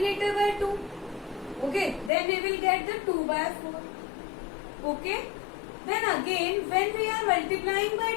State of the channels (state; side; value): drops out; right; at 2.1 s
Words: by 2. Okay, then we will get the 2 by 4. Okay, then again when we are multiplying by